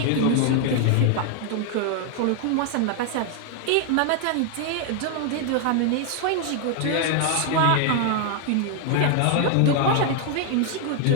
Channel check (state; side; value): different; both; correlation 0.00